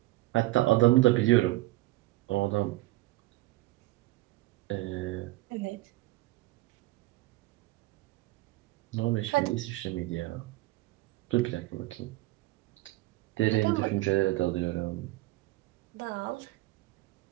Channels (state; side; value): quieter; left; 18.8 dB